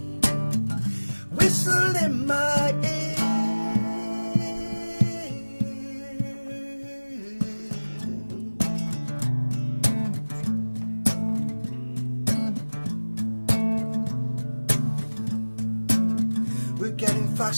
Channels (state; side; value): inverted; both; correlation -1.00